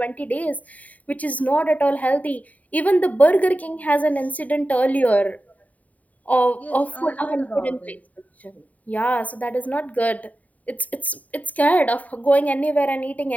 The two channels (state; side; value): late; right; 0.072 ms